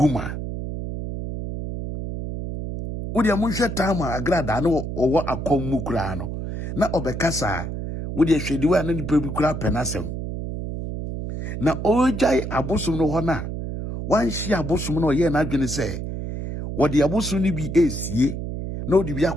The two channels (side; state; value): right; noise; hum, 5 dB below the sound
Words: Udi amusha tama Agradaa no owo akomu kura no. Na obekasa udi ehwedi wa na nipa bi kura penasem. Na ojai abosum no ho na wan hia abosum no ye na adwene se wodi abosum ni bi esie na odi bi